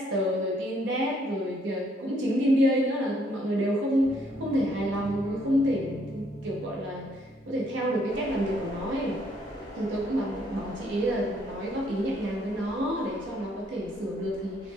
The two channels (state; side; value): normal; both; correlation 0.68